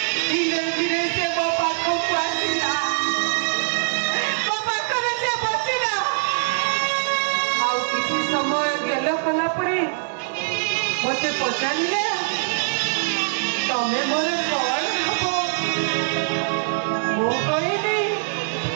मते पचारे तमें मोर कौन हब मु कहली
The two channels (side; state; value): left; silent; digital silence